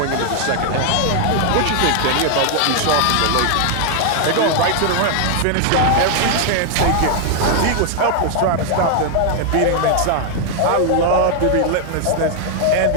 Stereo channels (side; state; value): both; different; correlation 0.00